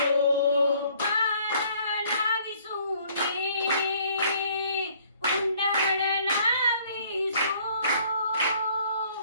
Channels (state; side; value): inverted; both; correlation -0.60